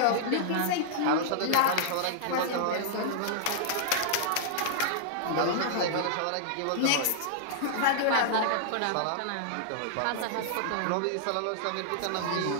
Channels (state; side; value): different; both; correlation -0.01